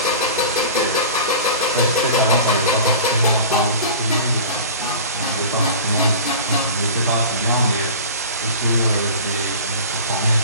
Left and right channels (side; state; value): both; inverted; correlation -0.37